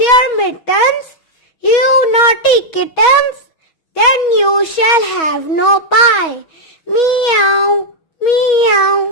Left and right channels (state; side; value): late; right; 6.2 ms